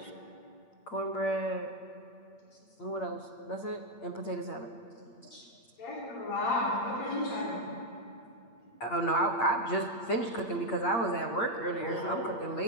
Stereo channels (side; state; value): right; late; 8.7 ms